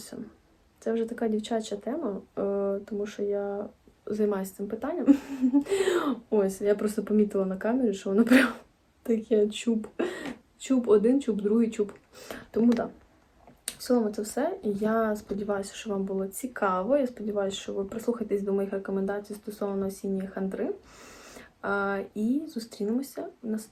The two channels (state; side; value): identical; both; correlation 1.00